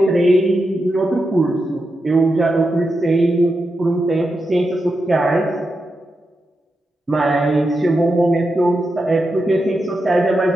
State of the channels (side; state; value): both; normal; correlation 0.88